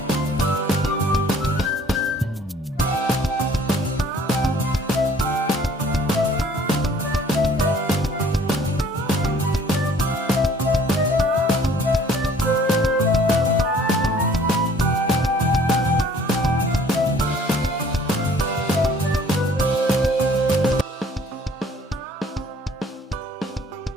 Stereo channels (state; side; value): normal; both; correlation 0.56